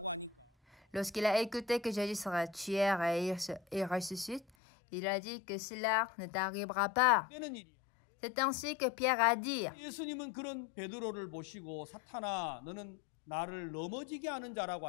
Lorsqu'il a écouté que Jésus sera tué et ressuscite, il a dit que cela ne t'arrivera pas. C'est ainsi que Pierre a dit.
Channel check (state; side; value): drops out; right; at 4.5 s